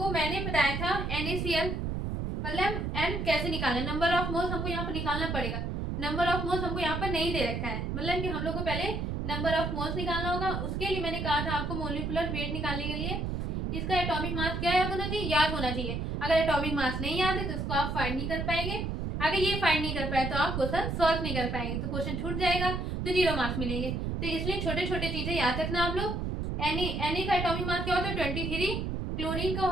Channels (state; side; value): noise; right; rumble, 2 dB below the sound